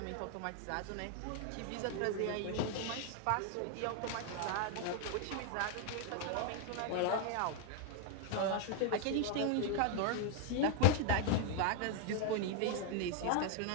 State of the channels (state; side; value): different; both; correlation 0.00